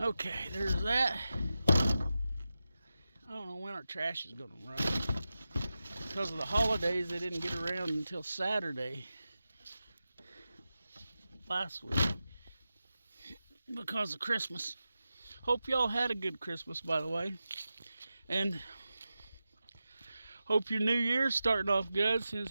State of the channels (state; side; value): inverted; both; correlation -0.92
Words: there's that. I don't know when our trash is going to run. Because of the holidays, they didn't get around until Saturday last week. Because of Christmas. Hope y'all had a good Christmas, by the way. And hope your new year's starting off good, since